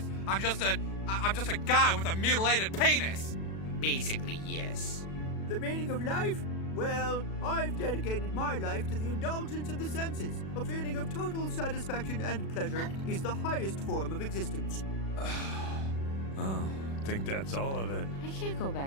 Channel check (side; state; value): right; late; 36 ms